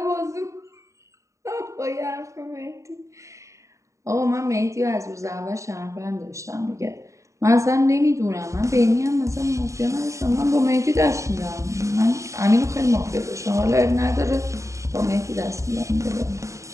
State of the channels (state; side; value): late; left; 0.15 ms